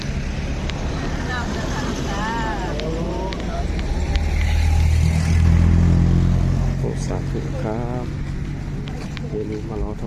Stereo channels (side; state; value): both; identical; correlation 1.00